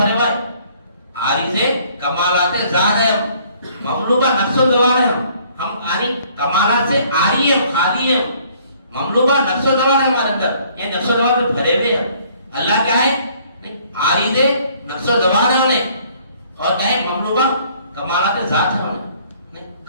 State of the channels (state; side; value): inverted; both; correlation -0.60